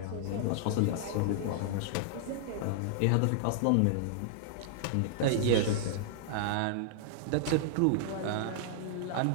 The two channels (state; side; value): different; both; correlation -0.01